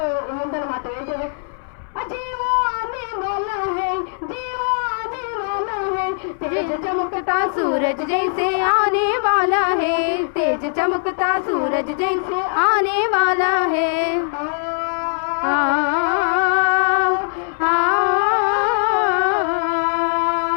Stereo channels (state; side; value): silent; right; 61 dB below the other